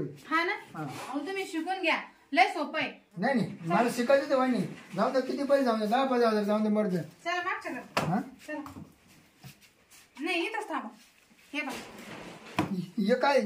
हा ना अहो तुम्ही शिकून घ्या लय सोपं आहे. नाही मला शिकायचं तर वाणी जाऊ दे किती पैसे जाऊ दे 10,000 जाऊ दे मर्द. चला मागच्या घरात. हा चला नाही इथंच थांबा. हे बघा हे काय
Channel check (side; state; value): both; identical; correlation 1.00